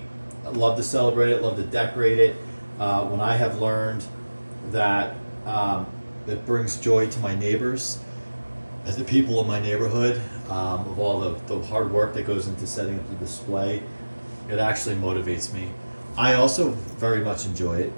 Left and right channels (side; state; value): both; inverted; correlation -1.00